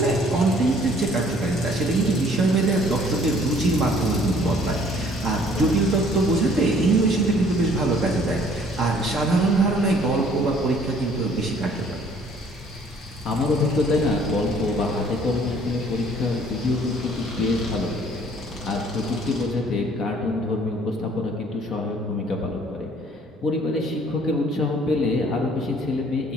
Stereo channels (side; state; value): both; normal; correlation 0.58